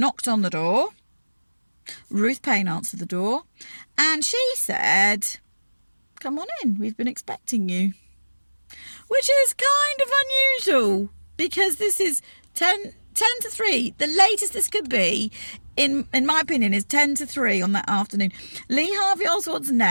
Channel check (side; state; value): both; inverted; correlation -1.00